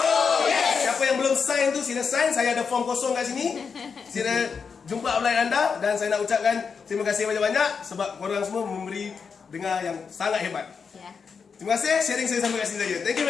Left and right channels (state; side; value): quieter; right; 5.8 dB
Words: yes. Siapa yang belum sign tu sila sign. Saya ada form kosong kat sini. Sila jumpa upline anda. Dan saya nak ucapkan terima kasih banyak-banyak sebab korang semua memberi dengar yang sangat hebat. Ya. Terima kasih sharing saya sampai kat sini saja. Thank you